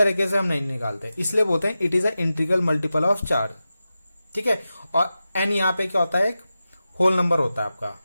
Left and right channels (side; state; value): both; inverted; correlation -0.93